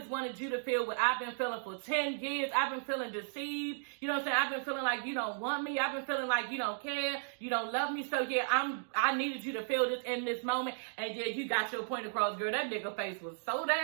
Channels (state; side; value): silent; left; digital silence